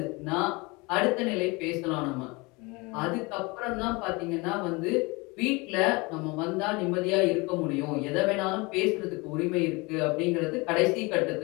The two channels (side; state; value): right; quieter; 26.0 dB